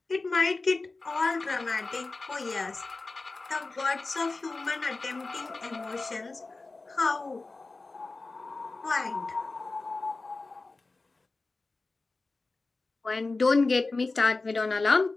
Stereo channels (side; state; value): right; quieter; 3.6 dB